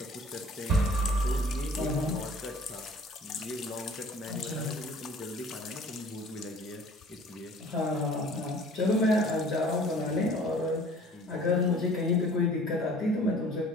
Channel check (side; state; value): both; normal; correlation 0.50